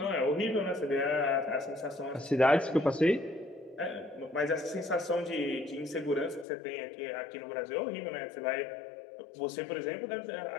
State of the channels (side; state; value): right; drops out; at 6.5 s